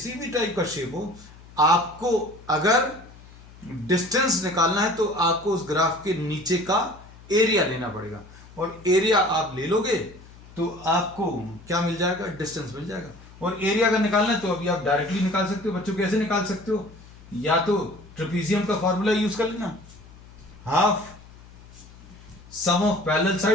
भी टाइप का शेप हो, आपको अगर डिस्टेंस निकालना है तो आपको उस ग्राफ के नीचे का एरिया लेना पड़ेगा, और एरिया आप ले लोगे तो आपको क्या मिल जाएगा, डिस्टेंस मिल जाएगा। और एरिया अगर निकालना है तो अभी आप डायरेक्टली निकाल सकते हो बच्चों। कैसे निकाल सकते हो, या तो ट्रेपीजियम का फॉर्मूला यूज कर लेना, half sum of parallel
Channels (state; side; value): noise; left; hum, 21 dB below the sound